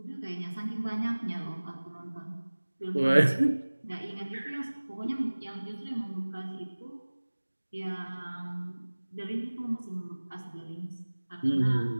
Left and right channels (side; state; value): both; inverted; correlation -1.00